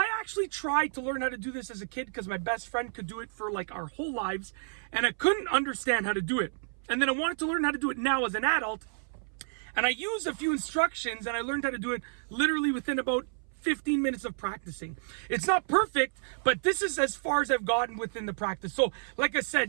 actually tried to learn how to do this as a kid because my best friend could do it for like our whole lives, and I couldn't understand how to do it. And then I wanted to learn how to do it now as an adult. And I used a few instructions and I learned how to do it literally within about 15 minutes of practicing. It's not perfect, but this is as far as I've gotten within the practice. So like I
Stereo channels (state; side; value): silent; left; 57 dB below the other